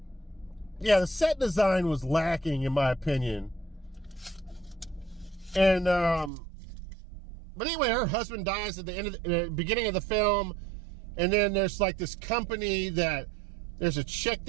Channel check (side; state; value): left; drops out; at 6.3 s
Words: yeah, the set design was lacking in my opinion. And, but anyway, her husband dies at the beginning of the film. And then there's like this company that there's a chick